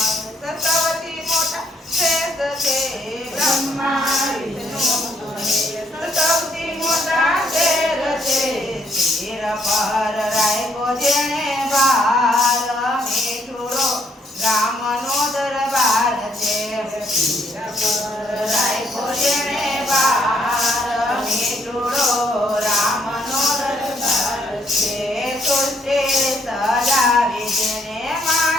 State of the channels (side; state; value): both; normal; correlation 0.70